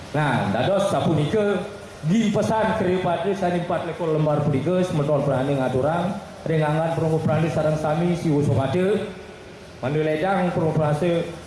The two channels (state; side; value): identical; both; correlation 1.00